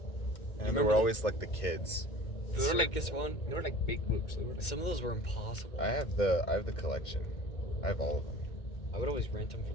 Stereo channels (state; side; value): late; right; 2.2 ms